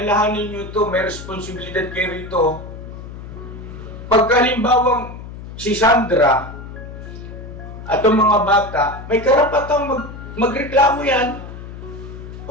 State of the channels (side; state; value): left; noise; hum, 12 dB below the sound